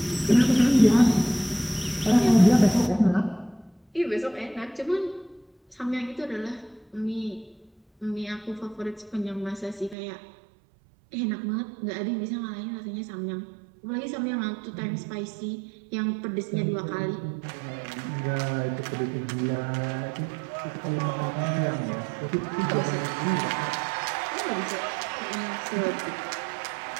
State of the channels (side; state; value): left; drops out; at 10.0 s